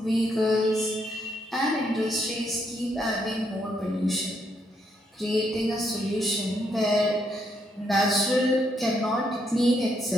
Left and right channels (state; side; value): normal; both; correlation 0.75